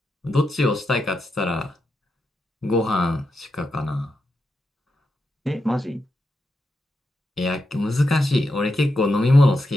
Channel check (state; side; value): normal; both; correlation 0.86